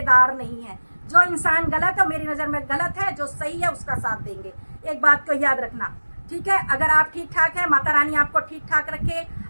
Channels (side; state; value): both; inverted; correlation -1.00